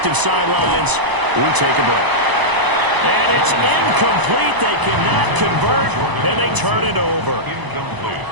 sidelines, we take a break. And it's incomplete. They cannot convert, and they turn it over. Incomplete.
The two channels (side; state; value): left; late; 1.0 ms